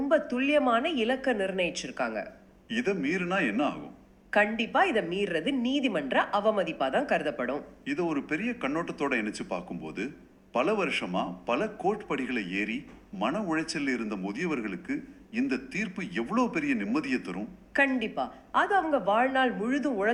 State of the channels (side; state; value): both; identical; correlation 1.00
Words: துல்லியமான இலக்க நிர்ணயிச்சிருக்காங்க. இதை மீறினா என்ன ஆகும்? கண்டிப்பா இதை மீறது நீதிமன்ற அவமதிப்பா தான் கருதப்படும். இதை ஒரு பெரிய கண்ணோட்டத்தோட இணைச்சு பார்க்கும்போது பல வருஷமா பல கோர்ட் படிகளை ஏறி மன உளைச்சல் இருந்த முதியவர்களுக்கு இந்த தீர்ப்பு எவ்வளவு பெரிய நிம்மதியை தரும். கண்டிப்பா அது அவங்க வாழ்நாள் முழுதும்